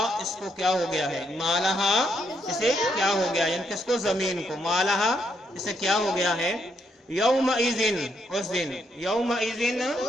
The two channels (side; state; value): both; normal; correlation 0.76